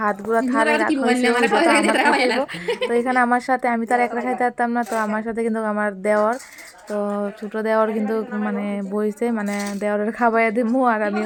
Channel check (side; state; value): both; identical; correlation 1.00